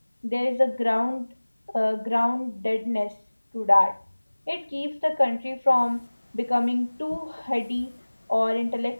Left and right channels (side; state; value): both; inverted; correlation -1.00